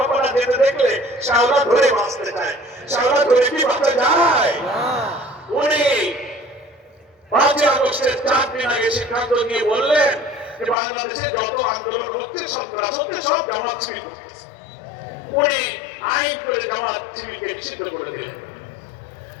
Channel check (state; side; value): drops out; right; at 10.8 s